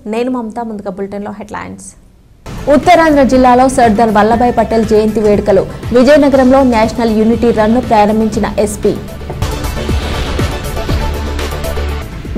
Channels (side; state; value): both; identical; correlation 1.00